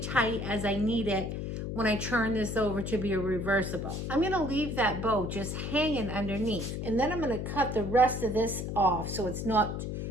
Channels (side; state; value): left; noise; hum, 4 dB below the sound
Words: as I need it when I turn this over to be a reversible. I'm going to leave that bow just hanging underneath, and then I'm going to cut the rest of this off so it's not